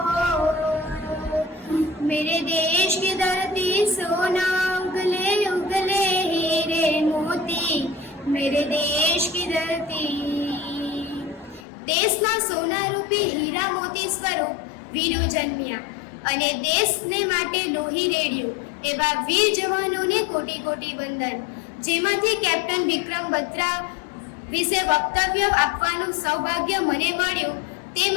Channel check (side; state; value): right; drops out; at 11.7 s